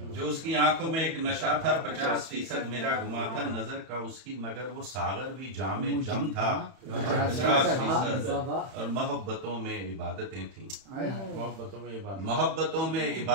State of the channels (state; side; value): late; left; 31 ms